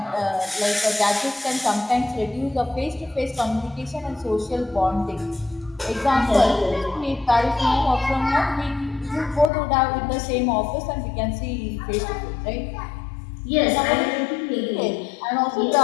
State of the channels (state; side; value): drops out; right; at 9.5 s